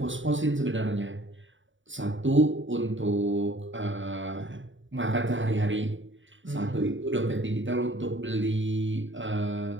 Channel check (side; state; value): left; late; 0.56 ms